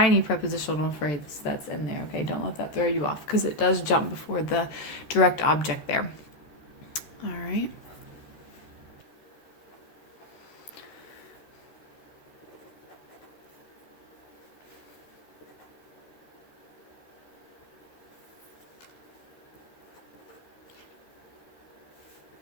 prepositional phrase that's in there. Okay, don't let that throw you off because it does jump before the direct object there. All right.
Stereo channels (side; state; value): right; late; 13 ms